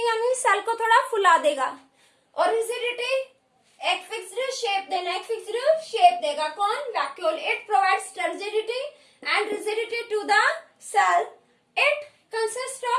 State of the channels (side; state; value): both; identical; correlation 1.00